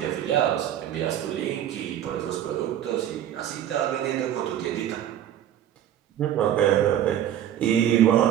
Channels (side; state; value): left; quieter; 11.0 dB